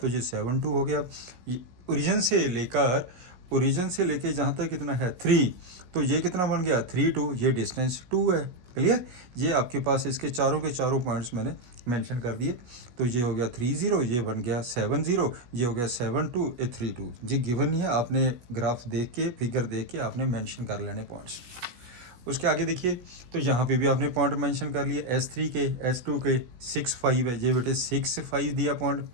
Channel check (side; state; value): left; late; 17 ms